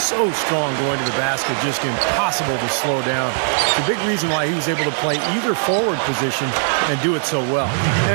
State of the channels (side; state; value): left; silent; digital silence